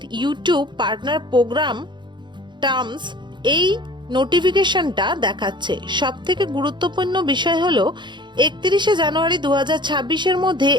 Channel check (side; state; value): left; late; 0.22 ms